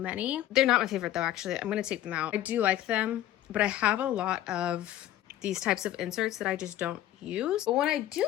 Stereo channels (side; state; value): right; quieter; 13.2 dB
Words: They're not my favorite though, actually. I'm gonna take them out. I do like them, but I have a lot of these types of inserts that I just don't use. But when I